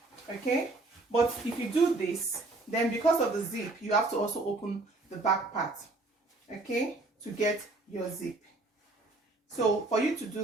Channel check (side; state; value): left; quieter; 3.1 dB